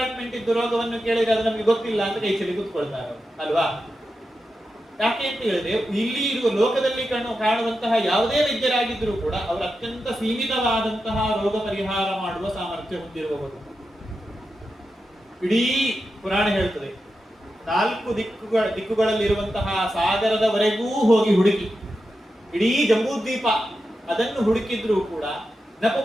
ಇದ್ದು ರೋಗವನ್ನು ಕೇಳಿದ್ರೆ ಅದು ನಮಗೆ ಗೊತ್ತಿಲ್ಲ ಅಂತ ಕೈ ಚೆಲ್ಲಿ ಕೂತ್ಕೊಳ್ತಾರೆ ಅಲ್ವಾ. ಯಾಕೆ ಅಂತ ಹೇಳಿದ್ರೆ ಇಲ್ಲಿ ಇರುವ ಲೋಕದಲ್ಲಿ ಕಾಣುವಂತಹ ಯಾವುದೇ ವೈದ್ಯರಾಗಿದ್ದರೂ ಕೂಡ ಅವರು ಅತ್ಯಂತ ಸೀಮಿತವಾದಂತಹ ರೋಗ ಪರಿಹಾರ ಮಾಡುವ ಸಾಮರ್ಥ್ಯ ಹೊಂದಿರುವವರು. ಇಡೀ ಪುರಾಣ ಹೇಳ್ತದೆ, 4 ದಿಕ್ಕುಗಳಲ್ಲಿರುವಂತಹ ಸಾಗರದವರೆಗೂ ಹೋಗಿ ಹುಡುಕಿ ಇಡೀ ಜಂಬೂದ್ವೀಪ ಅದನ್ನು ಹುಡುಕಿದ್ರೂ ಕೂಡ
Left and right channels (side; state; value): both; normal; correlation 0.89